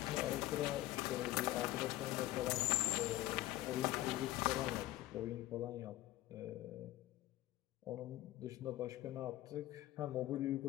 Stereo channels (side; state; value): right; quieter; 16.2 dB